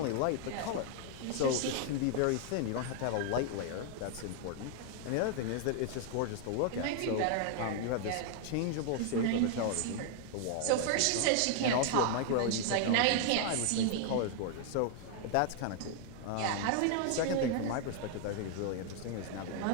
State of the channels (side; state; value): both; different; correlation 0.00